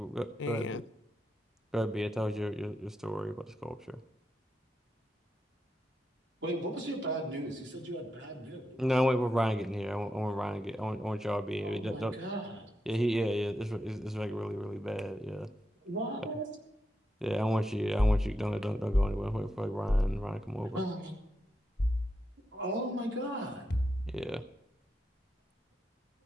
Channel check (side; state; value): both; normal; correlation 0.86